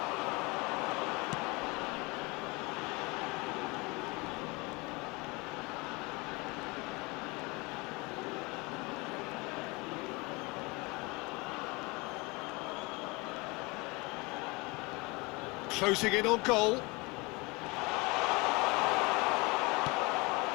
Closing in on goal.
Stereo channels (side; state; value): right; quieter; 25.6 dB